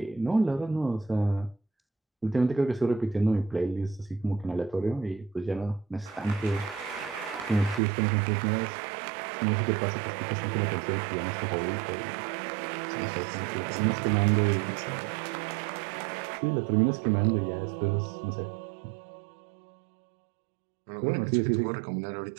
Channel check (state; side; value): drops out; left; at 7.8 s